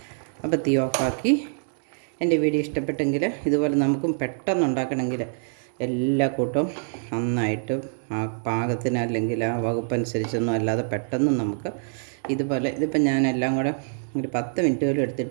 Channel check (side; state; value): left; silent; digital silence